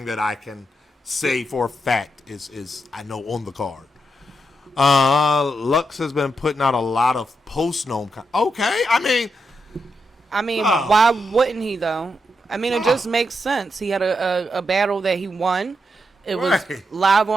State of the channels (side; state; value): both; normal; correlation 0.83